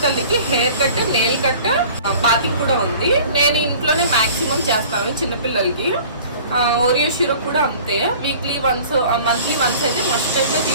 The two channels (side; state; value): both; inverted; correlation -0.46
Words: తల్లికి hair cut, nail cut, bathing కూడా ఉంది. నేను ఇంట్లోనే మ్యాక్సిమం చేస్తాను చిన్నపిల్లలకి. ఓరియో షిరో కూడా అంతే. వీక్లీ వన్స్, మంత్లీ వన్స్ అయితే మస్టర్గా